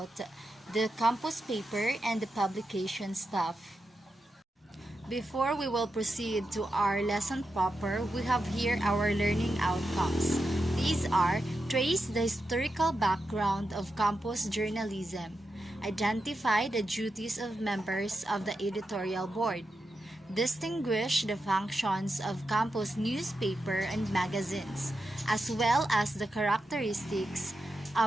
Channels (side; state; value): both; normal; correlation 0.88